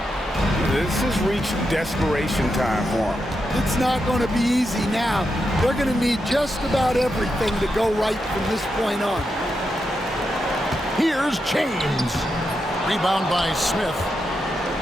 This has reached desperation time for them. It's not going to be easy now. They're going to need just about everything to go right from this point on. Here's James. Rebound by Smith.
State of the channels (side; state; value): both; normal; correlation 0.86